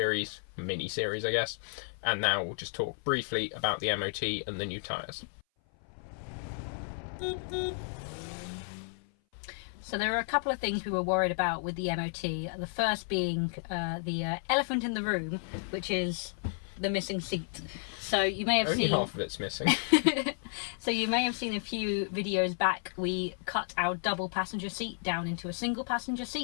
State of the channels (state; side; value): silent; right; 56 dB below the other